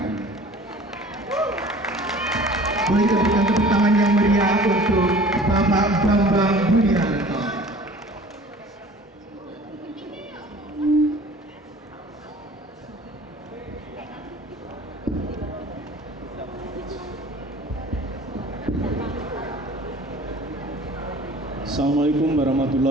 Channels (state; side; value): normal; both; correlation 0.46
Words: Boleh berikan tepuk tangan yang meriah untuk Bapak Bambang Budianto. Assalamualaikum